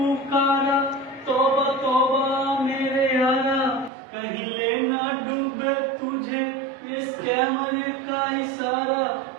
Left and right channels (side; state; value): left; drops out; at 3.9 s